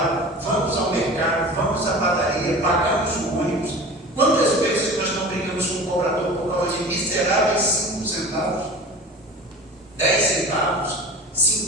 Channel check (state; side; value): normal; both; correlation 0.37